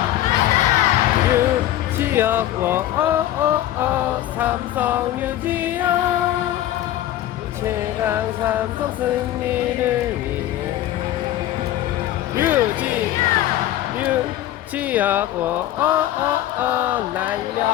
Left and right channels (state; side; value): quieter; right; 13.3 dB